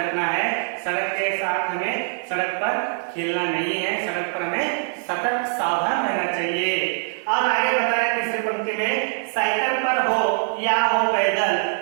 है। सड़क के साथ हमें सड़क पर खेलना नहीं है, सड़क पर हमें सतर्क सावधान रहना चाहिए। और आगे बताया तीसरी पंक्ति में, साइकिल पर हो या हो पैदल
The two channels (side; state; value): left; silent; 57 dB below the other